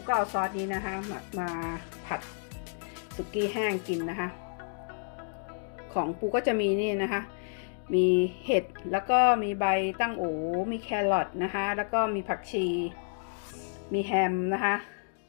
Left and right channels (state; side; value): silent; right; digital silence